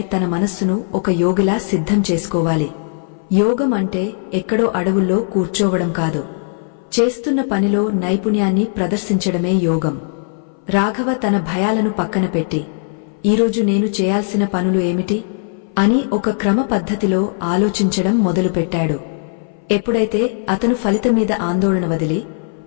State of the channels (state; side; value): silent; right; 60 dB below the other